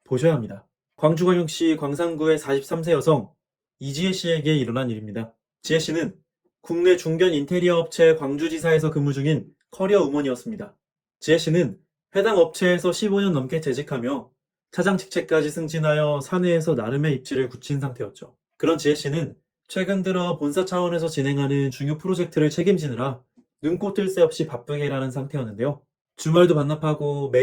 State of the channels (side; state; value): both; identical; correlation 1.00